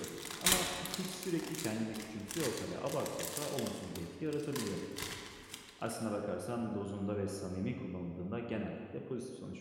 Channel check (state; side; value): identical; both; correlation 1.00